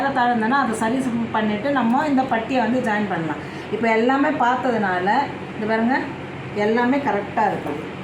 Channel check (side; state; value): both; identical; correlation 1.00